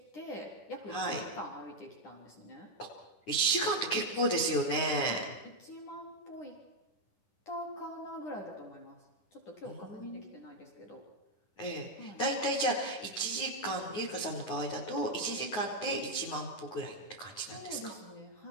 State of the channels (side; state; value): right; late; 9.6 ms